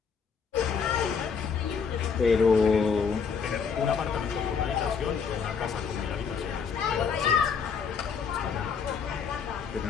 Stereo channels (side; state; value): right; quieter; 6.1 dB